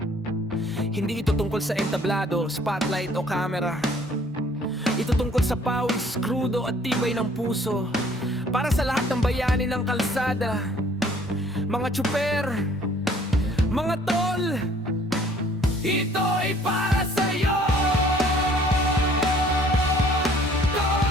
Hindi ito tungkol sa entablado, spotlight o camera. Ito tungkol sa pawis, krudo at tibay ng puso. Para sa lahat ng bayani ng kalsada, mga tsuper, mga tol, ito ay para sa'yo.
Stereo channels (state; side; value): normal; both; correlation 0.57